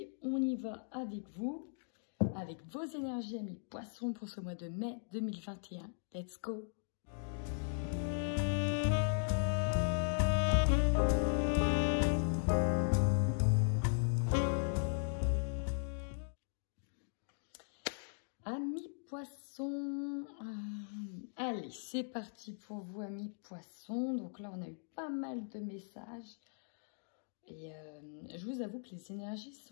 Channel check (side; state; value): right; silent; digital silence